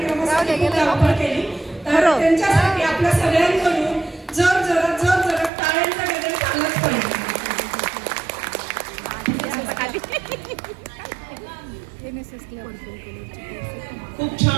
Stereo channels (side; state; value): left; drops out; at 5.5 s